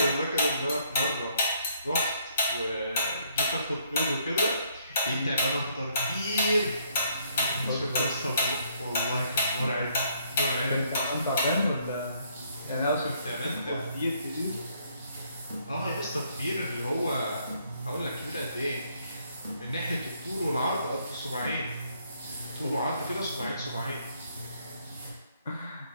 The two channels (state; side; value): inverted; both; correlation -0.68